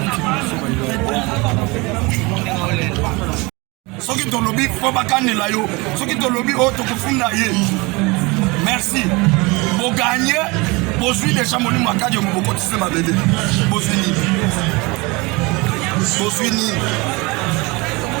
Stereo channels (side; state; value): left; quieter; 25.6 dB